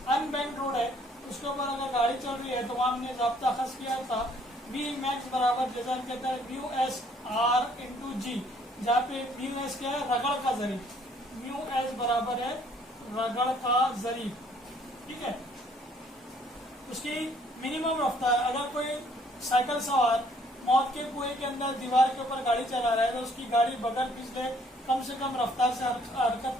अनबैंक्ड रोड है, उसके ऊपर अगर गाड़ी चल रही है तो वहाँ हमने जाब्ता खस किया था V मैक्स बराबर, जैसा हम कहते हैं म्यू एस R इंटू जी, जहाँ पे म्यू एस क्या है, रगड़ का जरीब, म्यू एस बराबर है रगड़ का जरीब, ठीक है। उसकी मिनिमम रफ्तार, अगर कोई साइकिल सवार मौत के कुएं के अंदर दीवार के ऊपर गाड़ी चला रहा है तो उसकी गाड़ी बगल पिछले कम से कम रफ्तार से हरकत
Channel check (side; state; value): both; normal; correlation 0.63